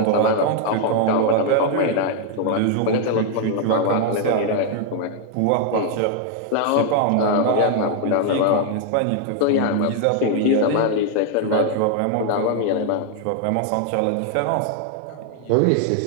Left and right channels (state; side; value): different; both; correlation 0.00